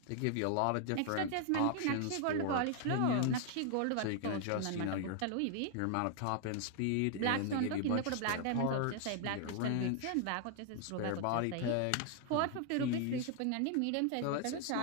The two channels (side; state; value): both; different; correlation 0.00